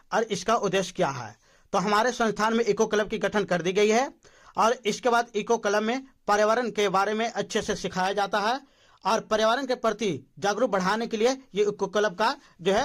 और इसका उद्देश्य क्या है। तो हमारे संस्थान में इको क्लब की गठन कर दी गई है और इसके बाद इको क्लब में पर्यावरण के बारे में अच्छे से सिखाया जाता है और पर्यावरण के प्रति जागरूक बढ़ाने के लिए ये इको क्लब का जो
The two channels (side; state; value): both; identical; correlation 1.00